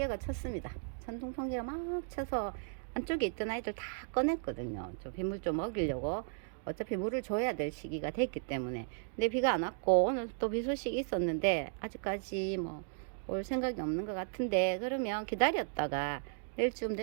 쳤습니다. 천둥 번개가 막 쳐서 안쪽에 있던 아이들 다 꺼냈거든요. 저 빗물 좀 먹이려고. 어차피 물을 줘야 될 시기가 됐기 때문에. 근데 비가 안 왔고 오늘 또 비 소식이 있었는데 아직까지 뭐 올 생각이 없는 것 같은데, 그러면 기다렸다가 내일쯤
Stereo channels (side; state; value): left; silent; digital silence